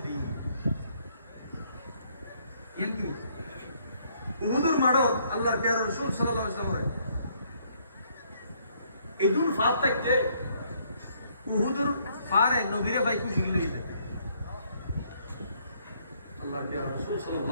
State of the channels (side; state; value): both; inverted; correlation -0.68